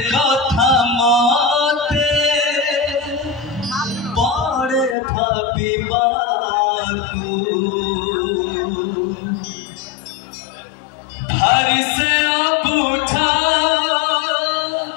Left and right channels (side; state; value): right; drops out; at 5.0 s